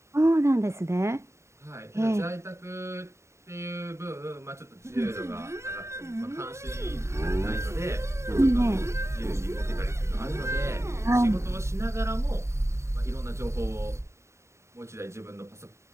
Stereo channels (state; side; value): late; left; 0.14 ms